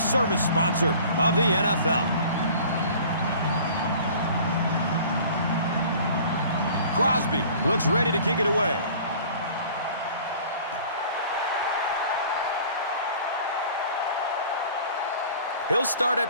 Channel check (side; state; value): both; inverted; correlation -0.47